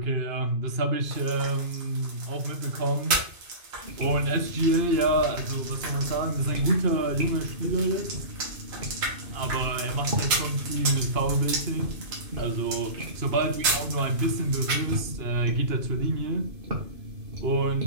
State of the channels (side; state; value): left; late; 2.5 ms